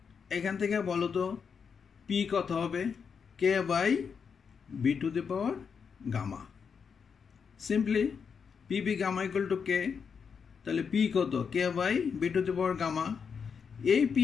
এখান থেকে বলো তো পি কত হবে? K by V to the power gamma. Simply PV gamma equal to K, তাহলে পি কত? K by V to the power gamma. এই পি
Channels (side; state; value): right; quieter; 6.3 dB